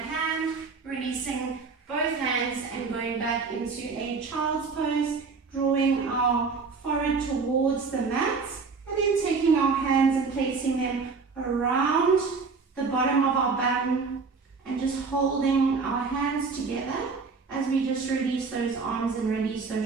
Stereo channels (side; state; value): left; quieter; 4.7 dB